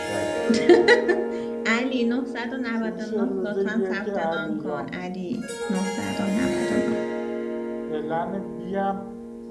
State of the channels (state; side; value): identical; both; correlation 1.00